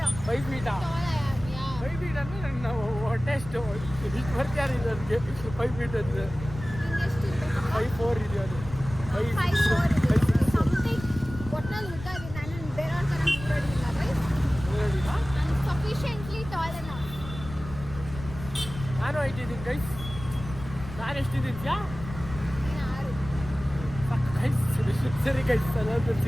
5 ಫೀಟ್ ಅಂದರೆ ನನ್ನ ಟೆಸ್ಟ್ ಇಷ್ಟು ಬರ್ತಾರೆ ಇದು. ಅದಕ್ಕೆ 5 ಫೀಟ್ ಅಂದರೆ 5'4" ಇದೆ ಅದು. 5'4" ಸಮಥಿಂಗ್ ಒಟ್ನಲ್ಲಿ ಉದ್ದ ಇದೆ. ನಾನು ಬೇರೆಯವ್ರ ಥರ ನೋಡಿಲ್ಲ ಗೈಸ್. ನಾನು ಸಫಿಷಿಯೆಂಟ್ಲಿ ಟಾಲ್ ಅನ್ನ. ನಾನು 5 ಇದ್ದೀನಿ ಗೈಸ್. ನಾನು ಎಷ್ಟಿದ್ದೀಯಾ? 6 ಗೈಸ್. ಸರಿ ಗೈಸ್, ಎಲ್ಲ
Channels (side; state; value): left; noise; rumble, 12 dB below the sound